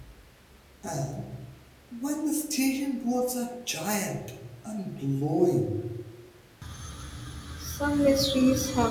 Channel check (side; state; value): both; identical; correlation 1.00